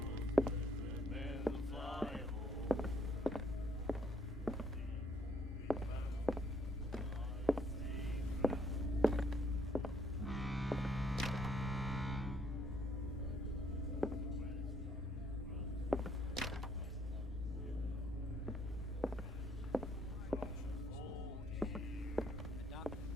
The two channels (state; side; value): normal; both; correlation 0.68